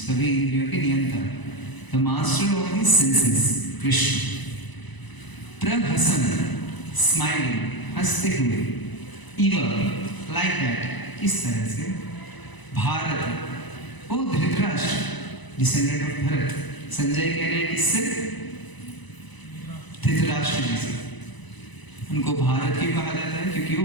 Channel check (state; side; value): late; right; 1.0 ms